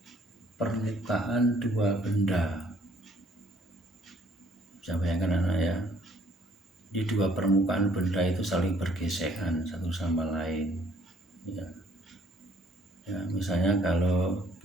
permukaan dua benda. Bisa bayangkan anak ya, di dua permukaan benda itu saling bergesekan satu sama lain ya. Ya, misalnya kalau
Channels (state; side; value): normal; both; correlation 0.63